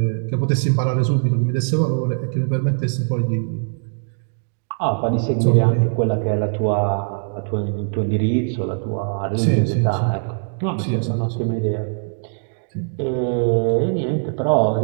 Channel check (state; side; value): silent; left; digital silence